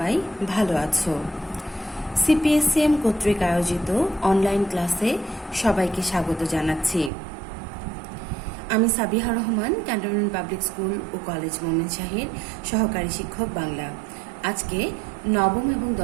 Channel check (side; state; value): left; drops out; at 7.1 s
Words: ভালো আছো। সিপিএসসিএম কর্তৃক আয়োজিত অনলাইন ক্লাসে সবাইকে স্বাগত জানাচ্ছি। আমি Sabiha Rahman, cantonment public school ও কলেজ মোমেনশাহীর সহকারী শিক্ষক বাংলা। আজকে নবম এবং